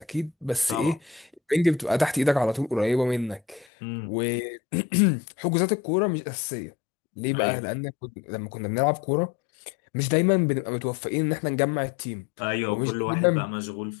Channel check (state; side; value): drops out; right; at 3.7 s